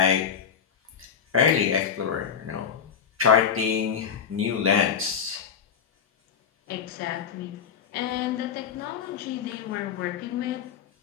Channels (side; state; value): right; quieter; 7.3 dB